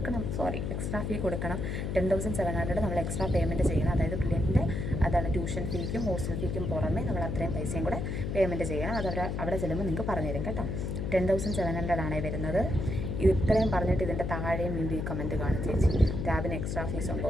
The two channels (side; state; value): left; noise; hum, 2 dB below the sound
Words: എക്സ്ട്രാ ഫീ കൊടുക്കണം. 10,700 നമ്മൾ എക്സ്ട്രാ പേയ്മെൻറ്റ് ചെയ്യണം. അതായത് പിള്ളേൻ്റെ അതാണ് ട്യൂഷൻ ഫീക്കും ഹോസ്റ്റൽ ഫീക്കും പുറമേ നമ്മൾ അത്രയും പൈസയും കൂടെ പേയ്മെൻറ്റ് ചെയ്യണം. അത് അവിടെ ചെല്ലുമ്പോൾ നിങ്ങൾക്ക് പറഞ്ഞു തരും കേട്ടോ. 10,700 ആണ് വരുന്നത്. ഇത്രയും പറഞ്ഞിട്ട് ഇതിൻ്റെ താഴെയും വീണ്ടും ഈ കമൻറ്റ് കാണും, ചേച്ചി ടാബിന് എക്സ്ട്രാ ഫീസ് ഉണ്ടോ